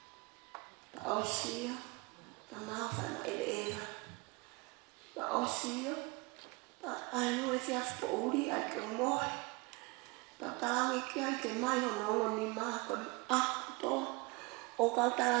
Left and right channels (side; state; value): left; quieter; 26.7 dB